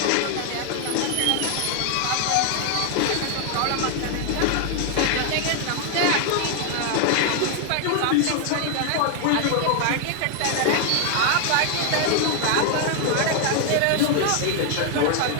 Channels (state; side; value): different; both; correlation 0.00